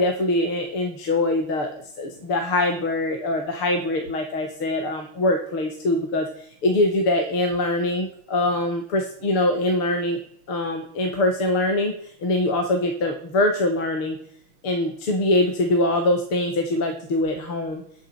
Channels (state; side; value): late; right; 6.6 ms